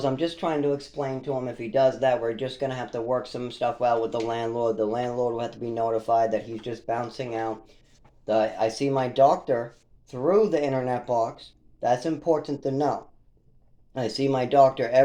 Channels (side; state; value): both; identical; correlation 1.00